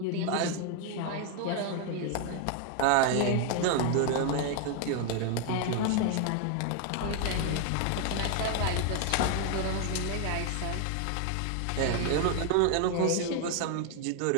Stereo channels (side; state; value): both; different; correlation 0.00